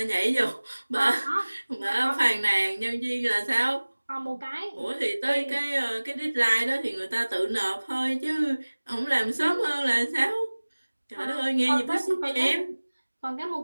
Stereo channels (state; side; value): inverted; both; correlation -1.00